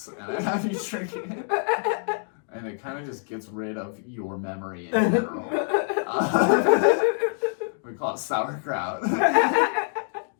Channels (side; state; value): right; silent; 61 dB below the other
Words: and I have you drink it. And it kind of just gets rid of your memory in general. We call it sauerkraut.